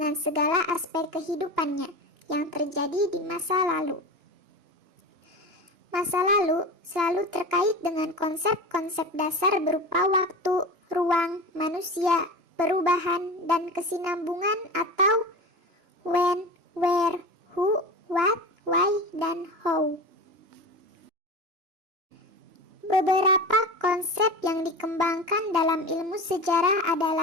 segala aspek kehidupannya yang terjadi di masa lalu. Masa lalu selalu terkait dengan konsep-konsep dasar berupa waktu, ruang, manusia, perubahan, dan kesinambungan atau when, where, who, what, why, dan how. Beberapa konsep yang dikembangkan dalam ilmu sejarah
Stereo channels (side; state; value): left; late; 2.9 ms